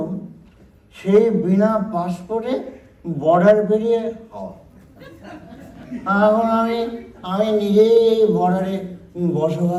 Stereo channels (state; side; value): identical; both; correlation 1.00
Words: সেই বিনা পাসপোর্টে বর্ডার পেরিয়ে হওয়া এখন আমি নিজেই এই বর্ডারে